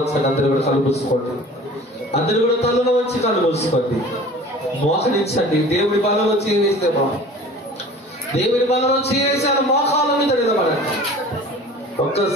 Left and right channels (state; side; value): normal; both; correlation 0.43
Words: అందరూ కూడా కలుపుకోండి. అందరూ కూడా తలలో వచ్చి కలుపుకోండి. మోకరించండి. దేవుడి బలంలో చేవేస్తే దేవుడి బలంలో చేవేసాను. మోకాల మీద నిలబడండి.